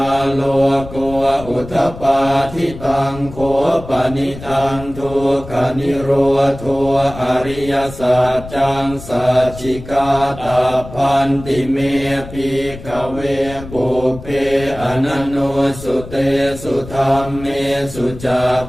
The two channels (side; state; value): left; noise; rumble, 14 dB below the sound